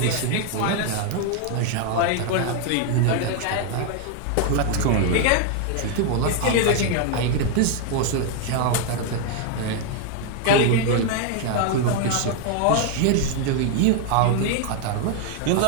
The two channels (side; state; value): both; different; correlation 0.00